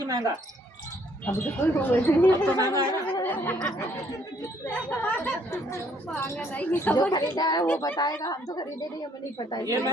महंगा? अभी तो कोई अब तो महंगा है ना। जो खरीदा है वो बताएगा, हम तो खरीदे नहीं, हमें नहीं पता। ये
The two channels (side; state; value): both; normal; correlation 0.66